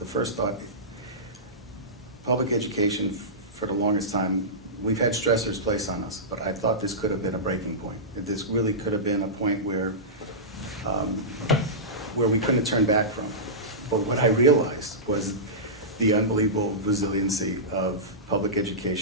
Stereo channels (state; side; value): normal; both; correlation -0.17